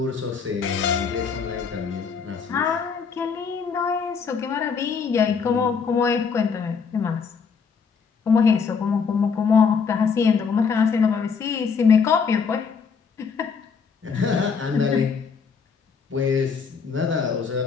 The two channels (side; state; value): right; quieter; 5.8 dB